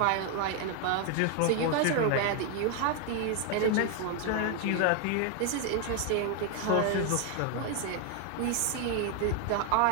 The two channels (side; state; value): both; different; correlation 0.01